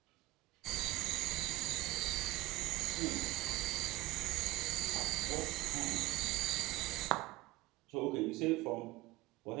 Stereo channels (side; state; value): left; quieter; 18.7 dB